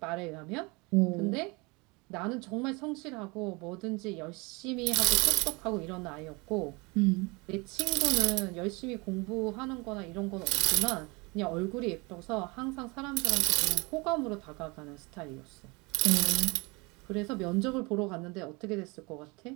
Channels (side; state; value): left; quieter; 27.0 dB